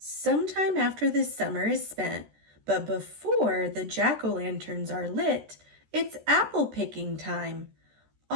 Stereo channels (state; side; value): late; left; 13 ms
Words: after the summer is spent, but before the jack-o'-lanterns are lit, it's apple picking time.